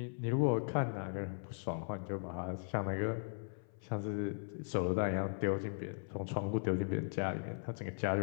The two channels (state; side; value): silent; right; 52 dB below the other